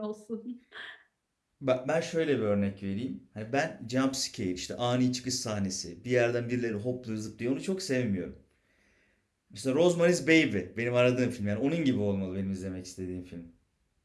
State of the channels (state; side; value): identical; both; correlation 1.00